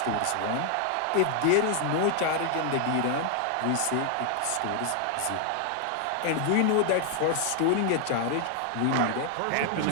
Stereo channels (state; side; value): different; both; correlation 0.00